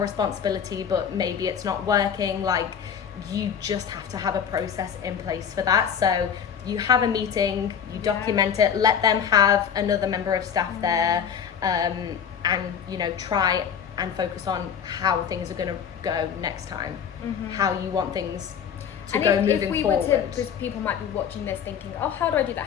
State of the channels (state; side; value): quieter; right; 7.8 dB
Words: but maybe it's not working, like you just have to have a process in place for that. So you have a meeting, you document it, let them have another member of staff there, and try and focus on how things are going to go next time, how you want things to go moving forward. Because people might be watching this thinking, oh, how do I do that?